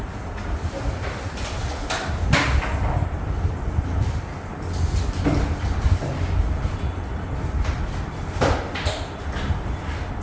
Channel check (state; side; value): identical; both; correlation 1.00